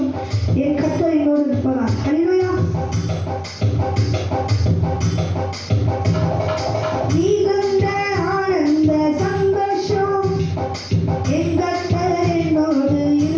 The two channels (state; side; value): identical; both; correlation 1.00